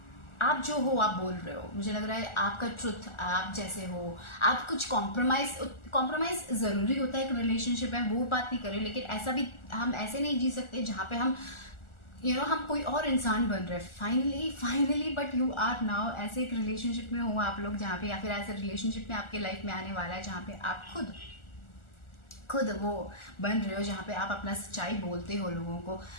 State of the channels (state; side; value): late; right; 1.4 ms